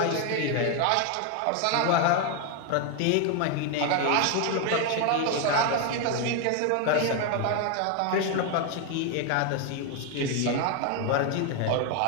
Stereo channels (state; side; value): different; both; correlation 0.01